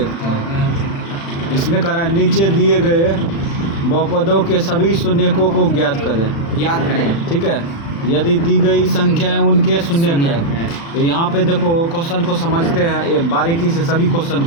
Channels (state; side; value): late; right; 36 ms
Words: हैं। इसमें करा नीचे दिए गए बहुपदों के सभी शून्यकों को ज्ञात करें। ठीक है, यदि दी गई संख्याएं उनके शून्यक है। तो यहाँ पे देखो क्वेश्चन को समझते हैं, ये बारीकी से सभी क्वेश्चन को